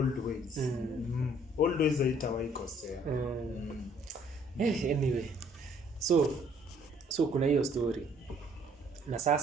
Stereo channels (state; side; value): normal; both; correlation 0.61